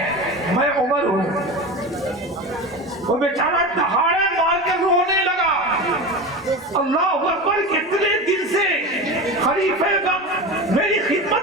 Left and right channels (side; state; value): both; normal; correlation 0.26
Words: میں عمر ہوں۔ وہ بیچارہ دہاڑے مار کے رونے لگا۔ اللہ اکبر، کتنے دن سے خلیفہ وقت میری